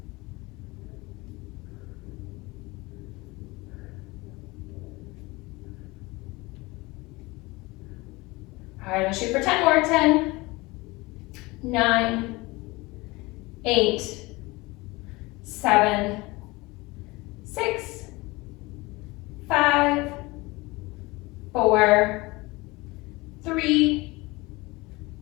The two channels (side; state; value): right; quieter; 22.8 dB